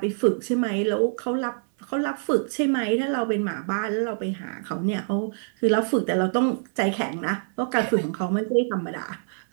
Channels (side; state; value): left; silent; digital silence